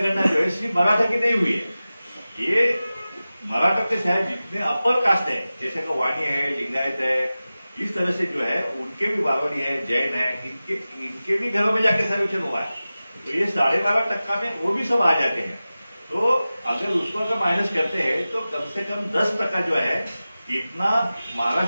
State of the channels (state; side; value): inverted; both; correlation -0.96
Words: जो है सिर्फ मराठा की नहीं हुई है, ये मराठा के शायद जितने अपर कास्ट है जैसे कि वाणी है, लिंगायत है, इस तरह से जो है उनके भी बावड़ी है, जैन है, इनके भी घरों में जाके सर्वेक्षण हुआ है। तो ये 12.5% में वो भी सब आ जाते हैं। तो अगर उसको अगर माइनस करते हैं तो कम से कम 10% जो है इतना